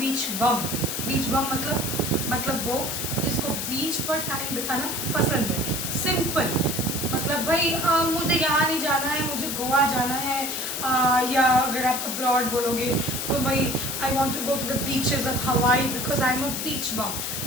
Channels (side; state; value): left; noise; hiss, 3 dB below the sound